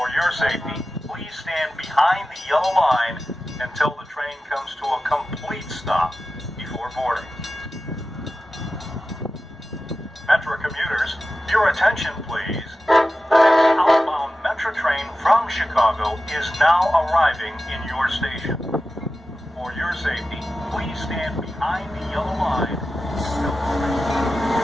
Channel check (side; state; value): both; normal; correlation 0.94